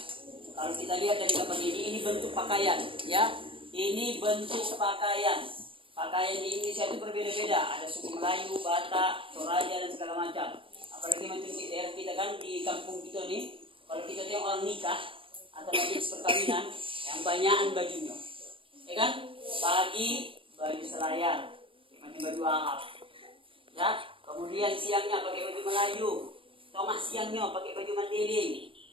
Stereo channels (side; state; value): left; late; 0.25 ms